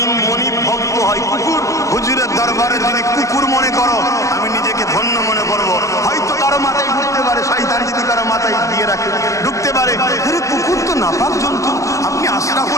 মনিব ভক্ত হয় কুকুর, হুজুরের দরবারে যদি কুকুর মনে করো আমি নিজেকে ধন্য মনে করবো। হয়তো কারো মাথায় ঢুকতে পারে, শয়তান যদি কারো মাথায় দিয়ে রাখে ঢুকতে পারে, আরে কুকুর তো নাপাক জন্তু, আপনি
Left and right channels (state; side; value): late; right; 0.16 ms